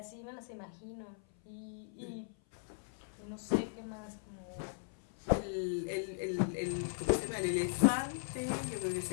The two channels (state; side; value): silent; right; 52 dB below the other